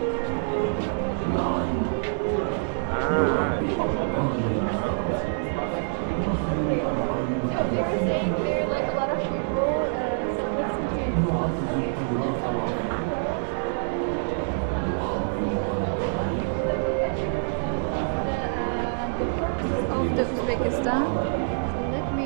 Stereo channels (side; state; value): left; silent; digital silence